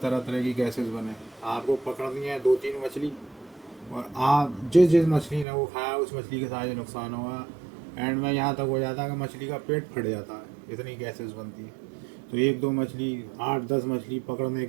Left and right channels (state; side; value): drops out; left; at 5.5 s